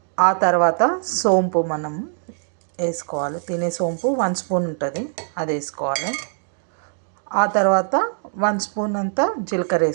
ఆ తర్వాత సోంపు మనం వేసుకోవాలి. తినే సోంపు 1 స్పూన్ ఉంటుంది, అది వేసుకోవాలి. ఆ తర్వాత 1 స్పూన్ అంతా జీలకర్ర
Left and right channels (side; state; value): left; silent; digital silence